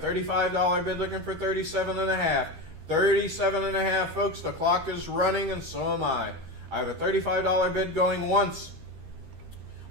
bid looking for 37 and a half. 37 and a half, folks. The clock is running, and so am I. I have a $35 bid going once,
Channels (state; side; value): late; left; 13 ms